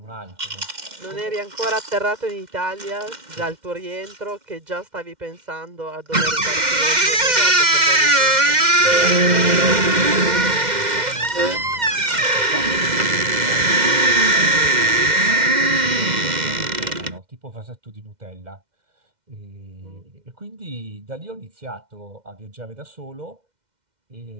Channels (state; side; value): late; left; 2.1 ms